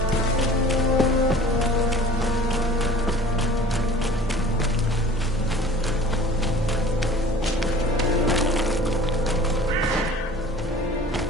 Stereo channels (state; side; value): normal; both; correlation 0.47